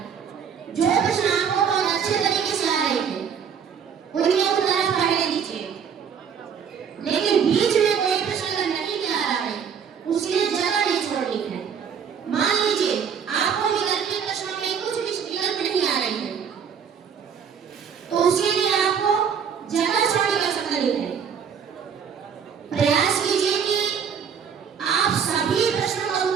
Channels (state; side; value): quieter; left; 7.2 dB